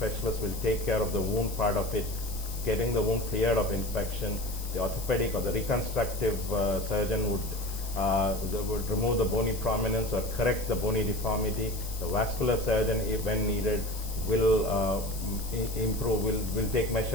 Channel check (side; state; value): left; noise; hiss, 12 dB below the sound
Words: will take care of the wound part of it, getting the wound cleared of infection. The orthopedic or the reconstructive surgeon would remove the bony prominence or correct the bony deformity. The vascular surgeon, when needed, will take